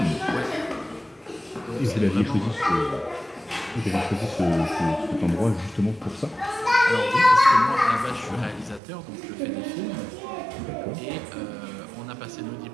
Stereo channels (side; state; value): left; drops out; at 8.8 s